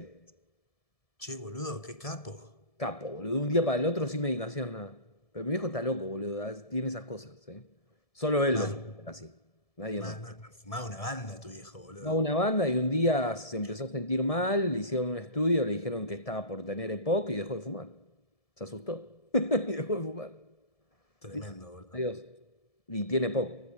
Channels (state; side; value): late; right; 1.7 ms